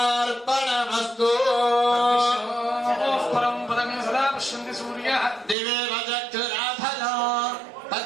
परं पदं सदा पश्यन्ति सूर्यः दिवे वदक्षुराफलो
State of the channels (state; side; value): drops out; left; at 5.6 s